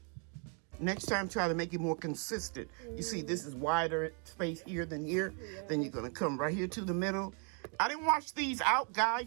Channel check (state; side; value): quieter; left; 39.5 dB